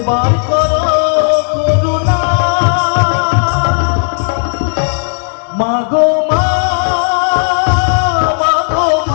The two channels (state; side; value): silent; right; 56 dB below the other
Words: করো করুণা মাগো মা মাগো